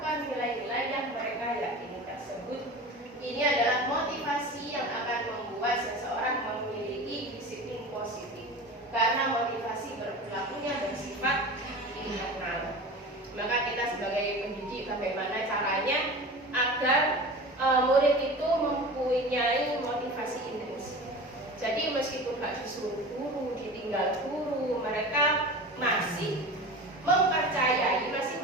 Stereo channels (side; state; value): both; normal; correlation 0.33